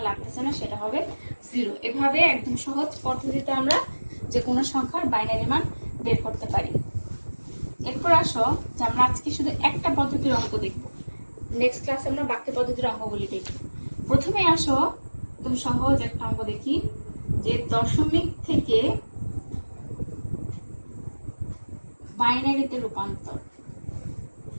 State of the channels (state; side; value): inverted; both; correlation -1.00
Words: লাগতেছে না, সেটা হবে 0। এভাবে একদম সহজ পদ্ধতিতে আমরা যে কোনো সংখ্যার বাইনারি মান বের করতে পারি। এরপর আসো যে আমরা আজকে শুধু একটা পদ্ধতির অঙ্ক দেখব, নেক্সট ক্লাসে আমরা বাকি পদ্ধতির অঙ্কগুলি দেখব। প্রথমে আসো একদম সহজ একটা অঙ্ক দেখি, যে দশমিক থেকে বাইনারিতে রূপান্তর।